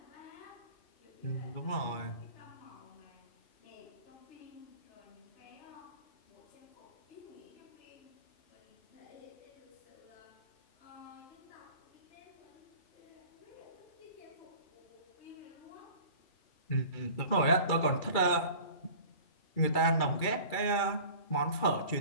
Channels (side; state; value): right; late; 2.4 ms